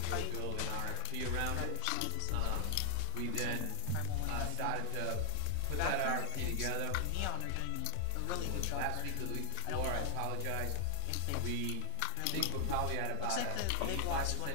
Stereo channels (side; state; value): both; different; correlation 0.00